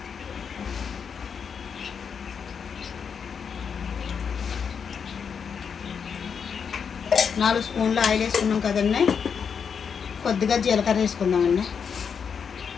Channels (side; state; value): right; quieter; 6.6 dB